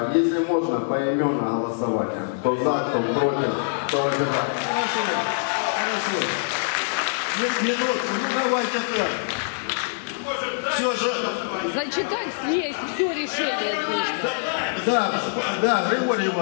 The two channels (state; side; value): silent; right; 56 dB below the other